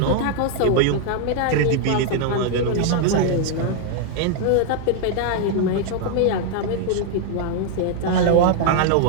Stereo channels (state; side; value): different; both; correlation 0.00